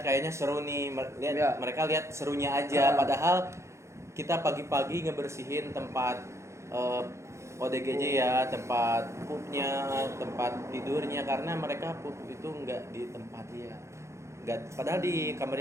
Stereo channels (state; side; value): late; left; 0.14 ms